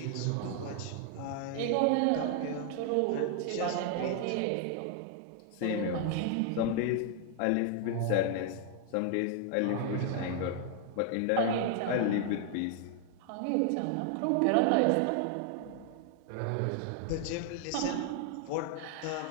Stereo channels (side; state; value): both; different; correlation 0.00